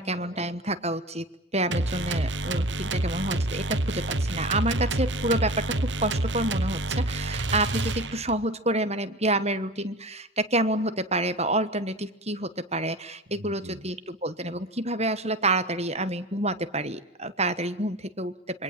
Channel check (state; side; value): normal; both; correlation 0.33